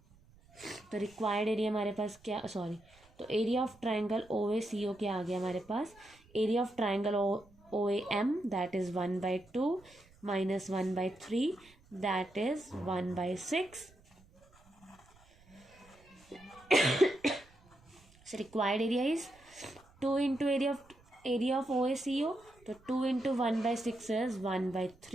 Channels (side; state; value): right; noise; rumble, 28 dB below the sound